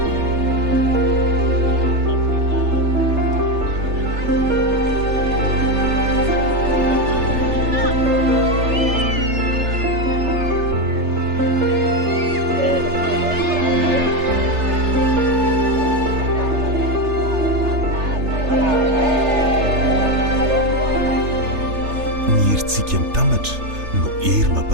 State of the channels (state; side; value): late; left; 3.3 ms